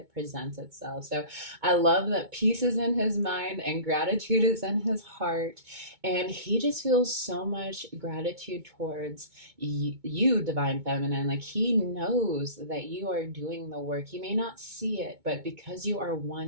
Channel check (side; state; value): left; late; 2.2 ms